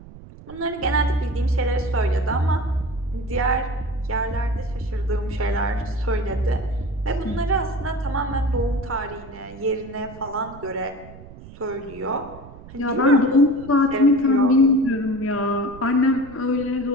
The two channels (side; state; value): right; noise; rumble, 18 dB below the sound